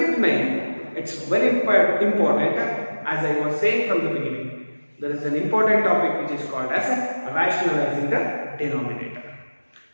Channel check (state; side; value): inverted; both; correlation -1.00